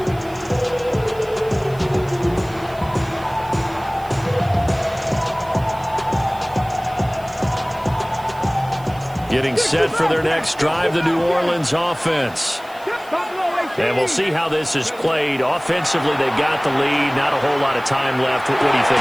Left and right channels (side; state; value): right; noise; hiss, 24 dB below the sound